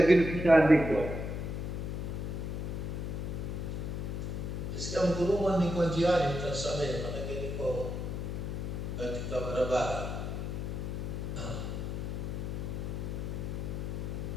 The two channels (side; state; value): left; noise; hum, 3 dB below the sound